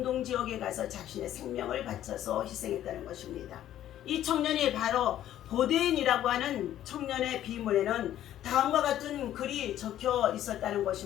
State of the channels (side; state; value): right; quieter; 12.1 dB